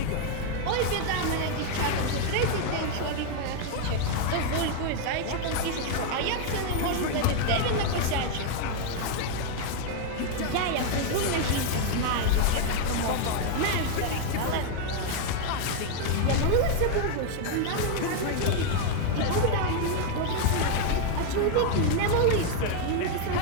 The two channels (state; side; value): different; both; correlation 0.00